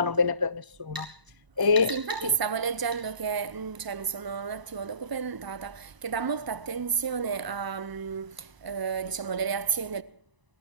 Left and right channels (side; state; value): left; late; 1.0 ms